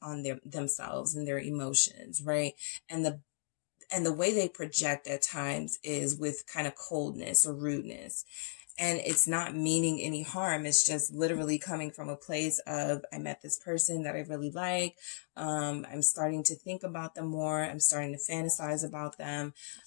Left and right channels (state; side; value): silent; right; digital silence